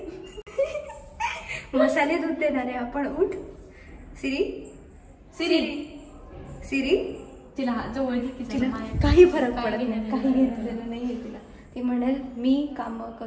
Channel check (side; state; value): both; identical; correlation 1.00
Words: मसाले दूध देणार आहे आपण, उठ. सिरी तिला जवळ घे, तिला काही फरक पडत नाही, काही घेतलेलं नाहीये तिला. ती म्हणेल मी काम